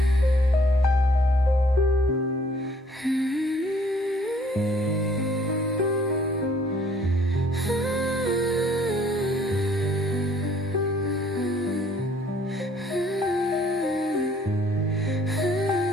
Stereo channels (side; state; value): both; normal; correlation 0.60